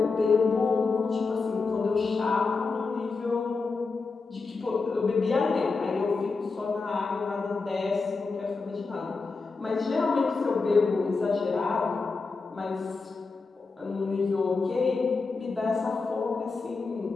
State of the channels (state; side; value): quieter; right; 4.3 dB